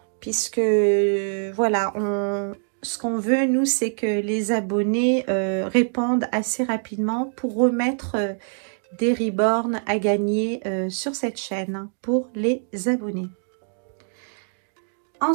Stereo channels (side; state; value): left; silent; digital silence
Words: Puisque, voilà, ce qu'on veut, nous, c'est que les abonnés répondent assez rapidement pour remettre des reborns à gagner sur cette chaîne pour les abonnés.